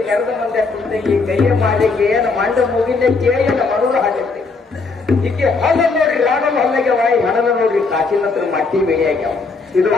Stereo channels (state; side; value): quieter; right; 4.1 dB